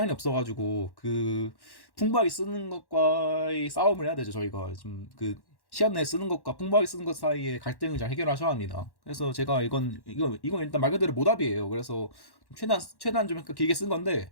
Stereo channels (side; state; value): right; late; 1.1 ms